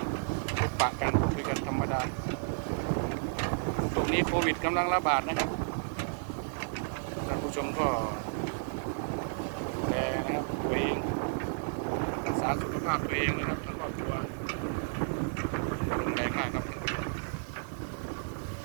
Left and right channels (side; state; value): left; silent; digital silence